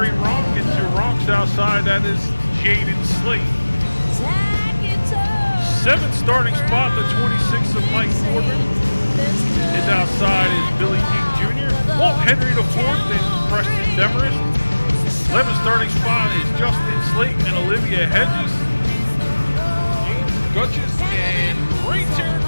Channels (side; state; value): both; inverted; correlation -1.00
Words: Ronk. And to Ronk's outside, that is Jaden Slate. Seventh starting spot, the 26 of Mike Corbin. His outside is Billy King Jr. Walt Henry the fourth and Preston Demarest. 11th starting spot is Justin Slate and Olivia Hedges. James Gutches and Ray